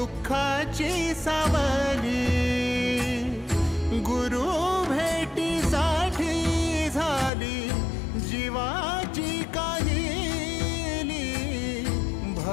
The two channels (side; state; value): right; drops out; at 7.3 s